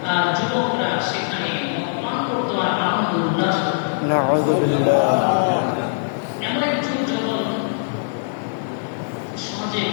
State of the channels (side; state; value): right; silent; 64 dB below the other